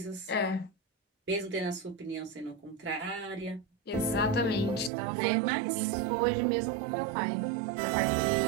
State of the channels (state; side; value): drops out; left; at 4.9 s